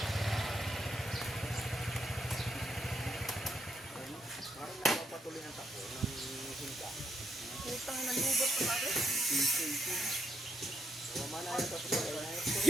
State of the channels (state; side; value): normal; both; correlation 0.79